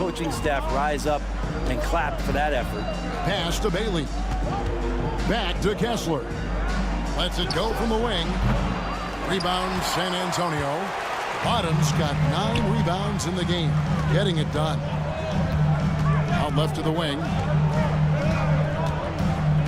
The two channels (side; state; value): both; identical; correlation 1.00